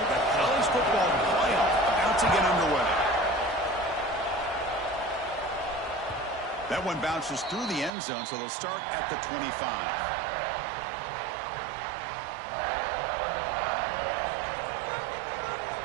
The college football playoff about to get underway. That one bounces through the end zone, so they'll start at the 25.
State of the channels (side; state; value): left; drops out; at 7.9 s